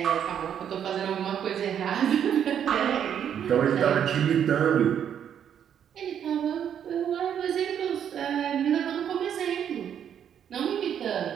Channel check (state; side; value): quieter; left; 9.0 dB